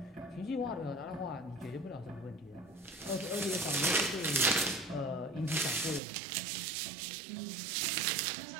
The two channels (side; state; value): left; drops out; at 6.0 s